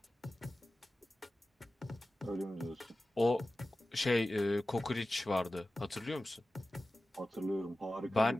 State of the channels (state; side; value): normal; both; correlation 0.95